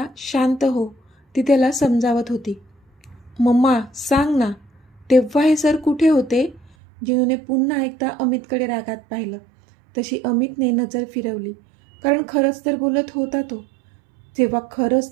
शांत हो, ती त्याला समजावत होती. मम्मा सांग ना, तेव्हा हे सर कुठे होते? जिनूने पुन्हा एकदा अमितकडे रागात पाहिलं. तशी अमितने नजर फिरवली, कारण खरंच तर बोलत होता तो. जेव्हा खरंच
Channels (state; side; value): drops out; left; at 6.7 s